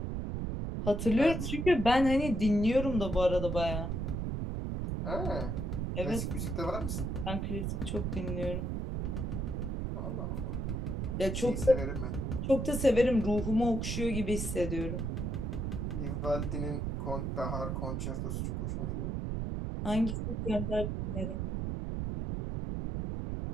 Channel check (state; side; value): noise; right; rumble, 2 dB below the sound